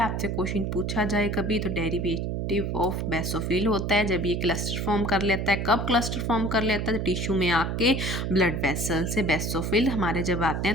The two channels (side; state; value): right; noise; hum, 2 dB below the sound